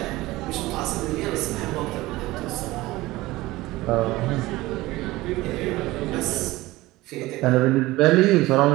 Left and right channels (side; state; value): left; quieter; 18.9 dB